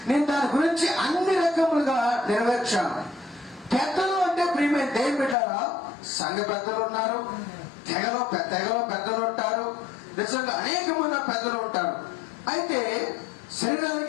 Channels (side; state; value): right; drops out; at 5.4 s